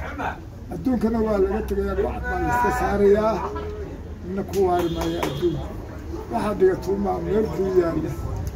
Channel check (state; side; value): identical; both; correlation 1.00